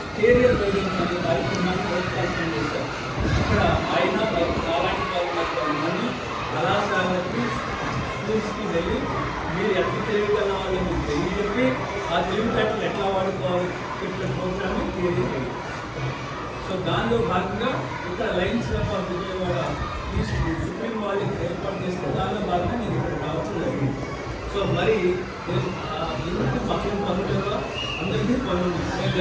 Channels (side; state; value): both; identical; correlation 1.00